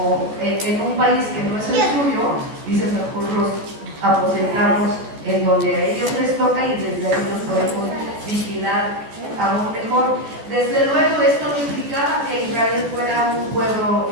en un país que no es el suyo, dicen mejor los aposentamos en donde a ellos les toca y desde ahí los podemos vigilar aún mejor. Desde luego esto no implicaba que Israel fuera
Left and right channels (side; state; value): left; late; 14 ms